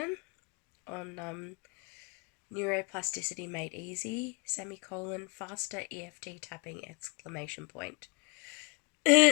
on Neuroplasticity Made Easy, faster EFT tapping,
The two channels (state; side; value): quieter; right; 29.5 dB